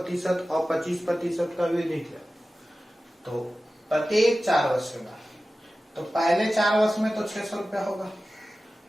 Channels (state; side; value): normal; both; correlation 0.95